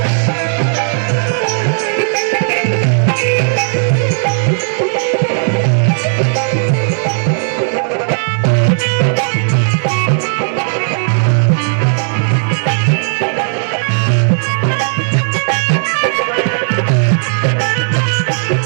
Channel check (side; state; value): left; silent; digital silence